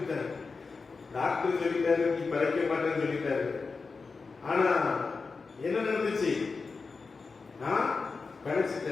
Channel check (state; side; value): quieter; right; 4.5 dB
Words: டாக்டர் சொல்லிட்டாரு நீ பிழைக்க மாட்டேன்னு சொல்லிட்டாரு. ஆனா என்ன நடந்துச்சு? நான்